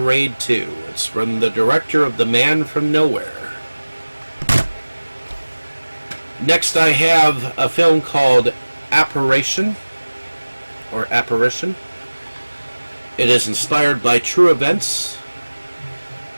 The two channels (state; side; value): inverted; both; correlation -1.00